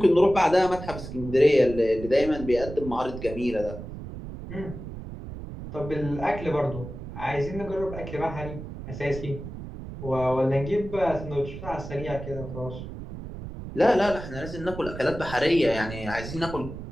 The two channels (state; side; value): noise; right; rumble, 10 dB below the sound